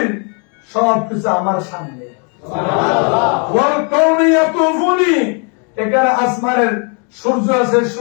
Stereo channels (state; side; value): quieter; right; 37.8 dB